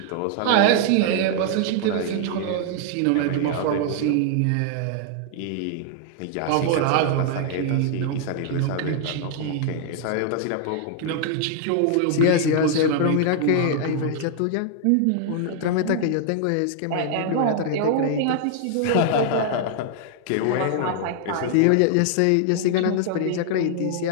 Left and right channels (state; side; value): different; both; correlation 0.00